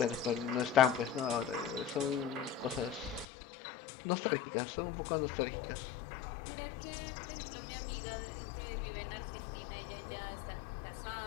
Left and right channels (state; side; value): drops out; right; at 3.2 s